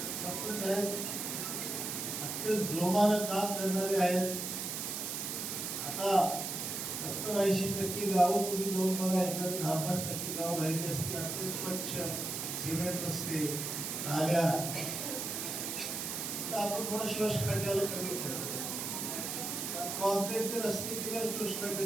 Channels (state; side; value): noise; right; hiss, 3 dB below the sound